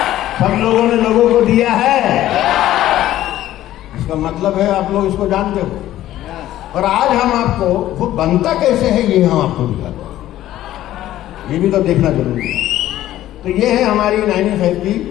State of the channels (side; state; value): right; quieter; 13.7 dB